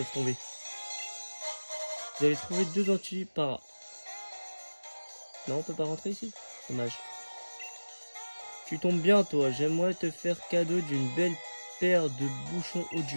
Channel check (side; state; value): both; inverted; correlation -1.00